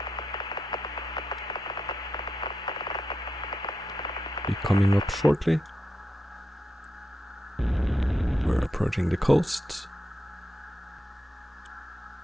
be coming up shortly. We're approaching the coast.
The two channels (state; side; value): normal; both; correlation 0.86